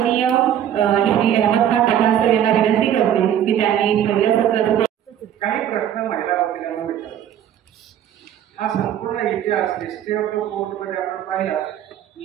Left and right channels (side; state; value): left; quieter; 10.3 dB